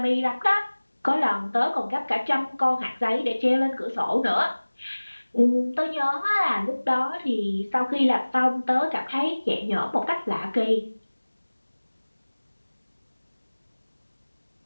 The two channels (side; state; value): both; inverted; correlation -1.00